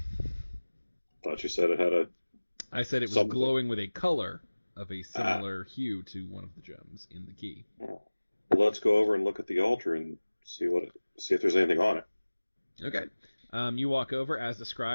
Thought you said it had a... I said it was Something. glowing with a color of a similar hue to one of the gems in the key. Oh. Well, let's go over and look at the altar and see if there's anything on it. Okay. You walk over, as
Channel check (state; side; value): inverted; both; correlation -1.00